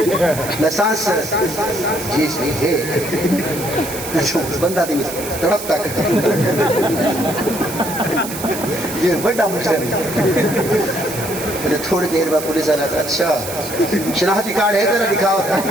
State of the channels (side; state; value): right; noise; hiss, 9 dB below the sound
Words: लाइसेंस जी सही है बंदा दी तड़प तक ये बड़ा मुश्किल है थोड़ी देर बाद पुलिस वाला अच्छा शनाख्ती कार्ड है तेरा दिखाओ